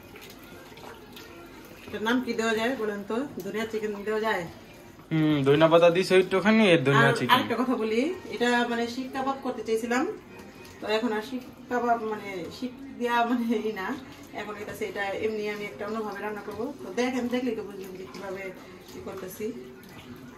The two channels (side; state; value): both; identical; correlation 1.00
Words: এটার নাম কি দেওয়া যায় বলেন তো? ধনিয়া চিকেন দেওয়া যায়? ধনিয়া পাতা দিছো একটুখানি, এর ধনিয়া চিকেন। আরেকটা কথা বলি, এটা মানে শিক কাবাব করতে চাইছিলাম, তো এখন আর শিক কাবাব মানে শিক দিয়া মানে এই না, এখন এটা এমনি আমি একটা অন্যভাবে রান্না করবো। তো দেখলেই তো বুঝলাম যে কিভাবে কি করতেছি।